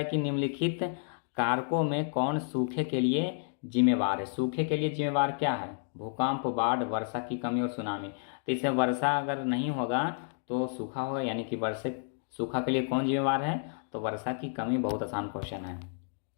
कि निम्नलिखित कारकों में कौन सूखे के लिए जिम्मेवार है। सूखे के लिए जिम्मेवार क्या है, भूकंप, बाढ़, वर्षा की कमी और सुनामी। तो इसमें वर्षा अगर नहीं होगा तो सूखा होगा, यानी कि सूखा के लिए कौन जिम्मेवार है, तो वर्षा की कमी। बहुत आसान क्वेश्चन है।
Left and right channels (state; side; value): silent; right; digital silence